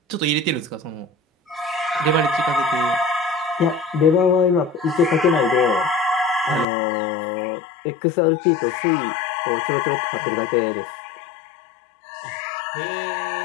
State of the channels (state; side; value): drops out; right; at 6.7 s